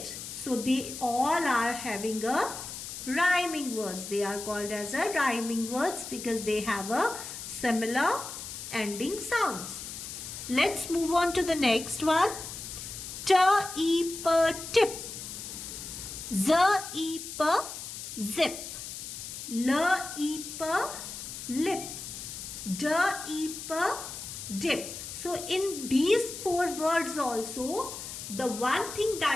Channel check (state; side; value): noise; left; hiss, 9 dB below the sound